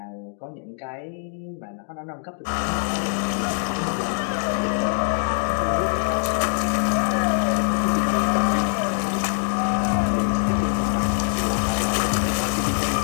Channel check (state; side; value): silent; right; digital silence